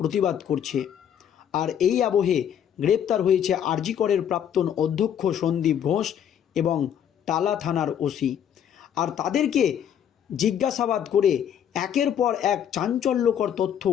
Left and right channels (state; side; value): quieter; right; 9.2 dB